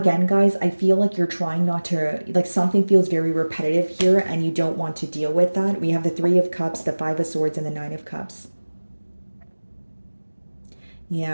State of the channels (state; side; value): inverted; both; correlation -1.00